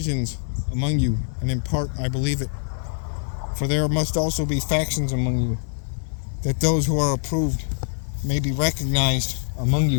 among you, and in part I believe it. For there must also be factions among you, that those who are approved may be recognized among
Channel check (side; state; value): right; silent; digital silence